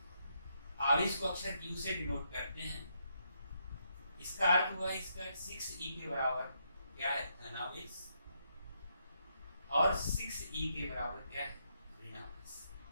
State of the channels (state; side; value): inverted; both; correlation -0.78